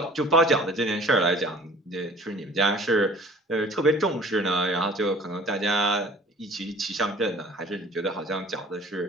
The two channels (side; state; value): both; normal; correlation 0.48